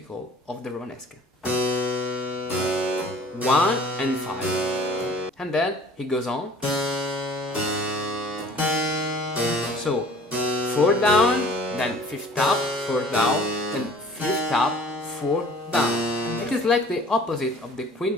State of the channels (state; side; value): normal; both; correlation 0.49